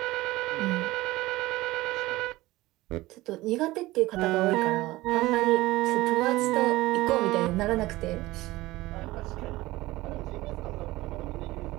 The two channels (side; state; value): left; quieter; 18.6 dB